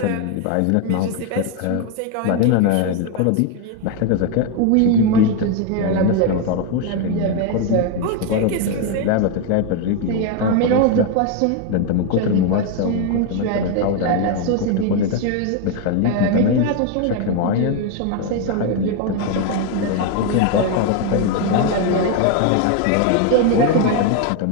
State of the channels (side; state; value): both; different; correlation 0.01